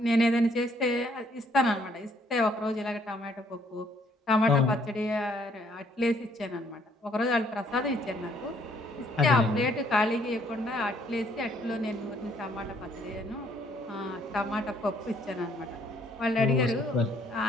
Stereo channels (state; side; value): normal; both; correlation 0.66